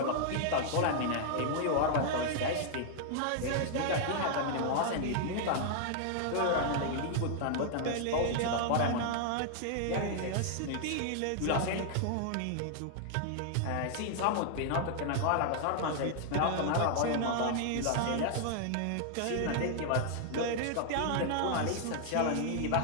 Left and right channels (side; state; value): both; different; correlation -0.01